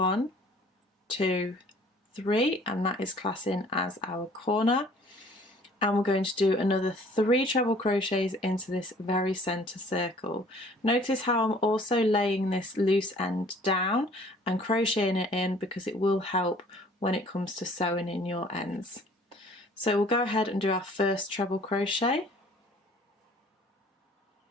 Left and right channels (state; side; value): normal; both; correlation 0.54